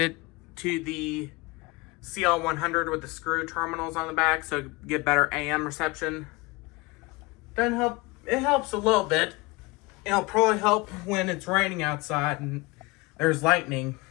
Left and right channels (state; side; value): quieter; right; 24.2 dB